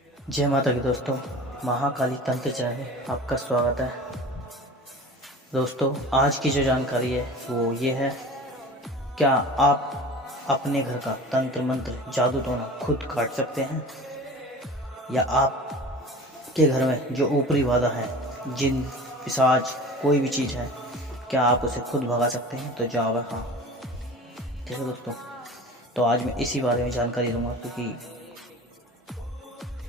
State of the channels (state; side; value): normal; both; correlation 0.38